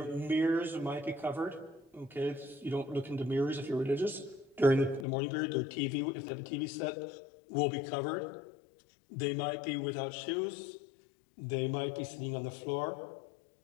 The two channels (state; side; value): drops out; right; at 5.1 s